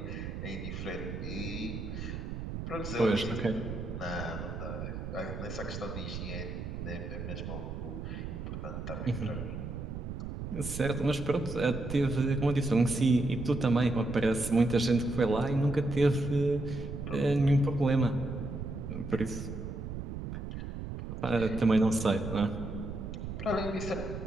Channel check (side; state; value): right; noise; rumble, 6 dB below the sound